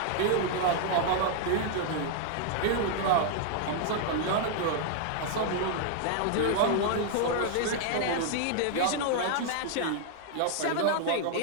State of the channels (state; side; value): different; both; correlation -0.01